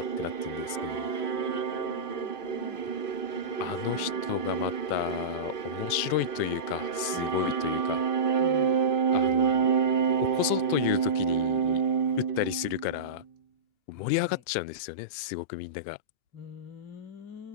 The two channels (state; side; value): late; right; 2.5 ms